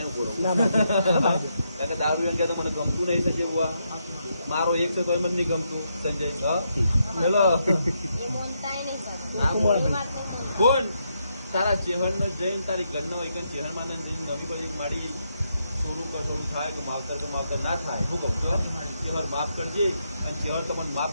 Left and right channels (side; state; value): both; inverted; correlation -0.80